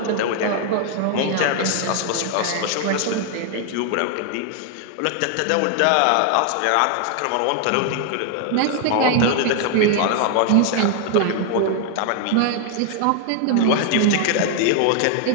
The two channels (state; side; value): different; both; correlation 0.00